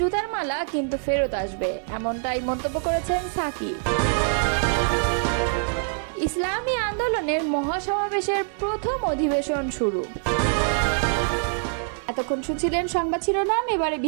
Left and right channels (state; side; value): silent; left; 62 dB below the other